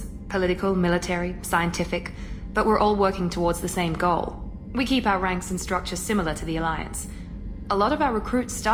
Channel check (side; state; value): both; identical; correlation 1.00